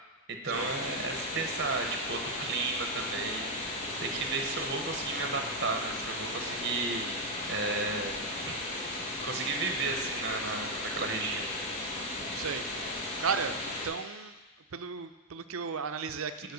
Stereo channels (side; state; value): both; normal; correlation 0.01